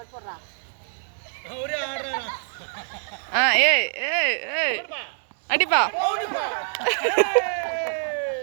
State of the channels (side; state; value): left; silent; digital silence